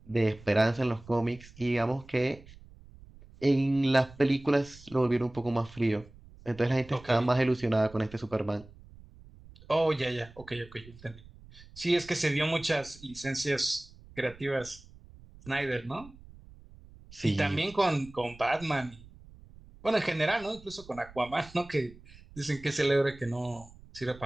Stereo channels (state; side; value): noise; right; rumble, 21 dB below the sound